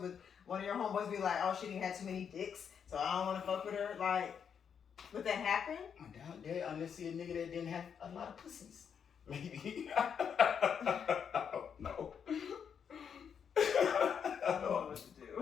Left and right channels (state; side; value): quieter; right; 7.4 dB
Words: Would one of your homeboys be like, "Oh, she didn't have too many dicks, so I don't want to fuck with her"? Like, Would that happen? I doubt that unless you're a nigga that didn't have a lot of pussies. Maybe. I don't know. I don't know what to